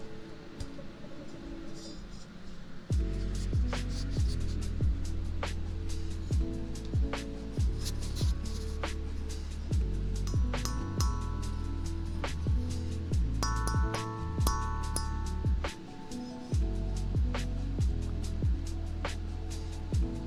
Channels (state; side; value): identical; both; correlation 1.00